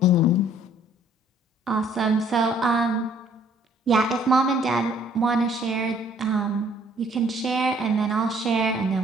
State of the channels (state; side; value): normal; both; correlation 0.60